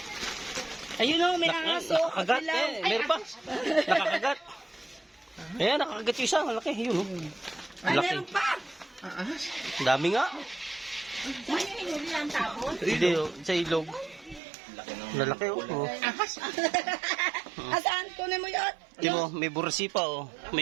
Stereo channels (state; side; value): drops out; left; at 14.4 s